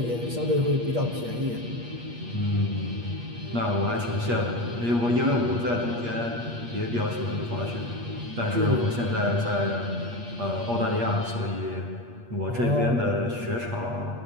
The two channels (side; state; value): left; late; 8.4 ms